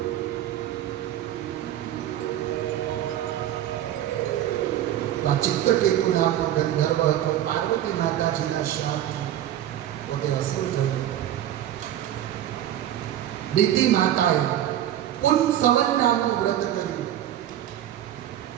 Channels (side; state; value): left; quieter; 12.0 dB